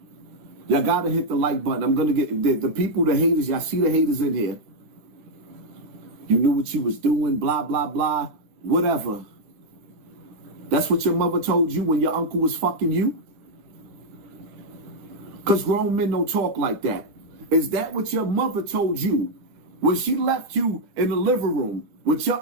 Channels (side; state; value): left; late; 10 ms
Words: Y'all got to hit the like button. I'm going to get the people, the haters. Y'all see the haters in here. You knew what you was doing, blah, blah, blah, whatever. That's what your mother told you when your uncle was fucking you? Because grown men don't talk like that. Is that what your mother told you when she left you in the living room with